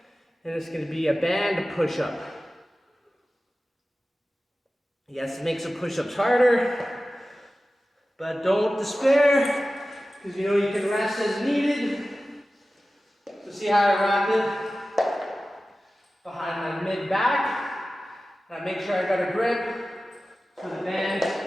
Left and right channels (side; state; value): both; normal; correlation 0.95